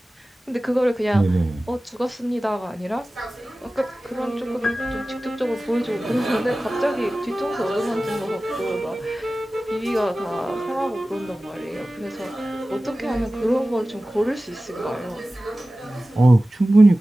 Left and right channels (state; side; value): normal; both; correlation 0.96